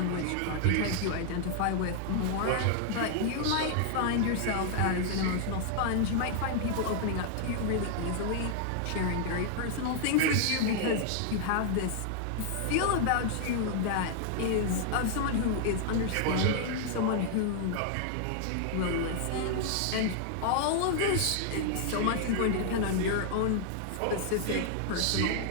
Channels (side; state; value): both; different; correlation -0.01